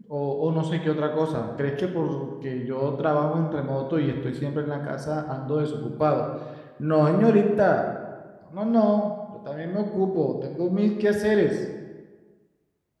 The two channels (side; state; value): both; identical; correlation 1.00